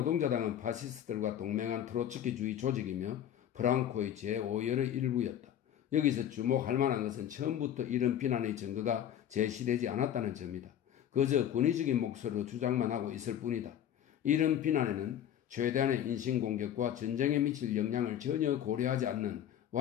파시스트들과 동맹한 트로츠키주의 조직이며 프랑코의 제5열의 일부였다. 여기서 주목할 만한 것은 처음부터 이런 비난의 증거가 제시되지 않았다는 점이다. 그저 권위적인 목소리로 주장만 하고 있을 뿐이다. 이런 비난에는 최대한의 인신공격과 전쟁에 미칠 영향을 전혀 고려하지 않는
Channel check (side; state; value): right; quieter; 10.4 dB